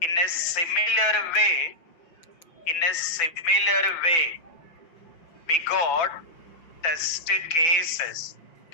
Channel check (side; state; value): right; late; 5.6 ms